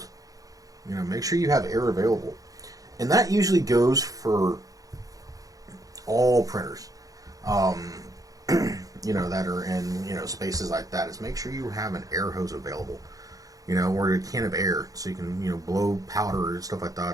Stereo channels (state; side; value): late; left; 0.17 ms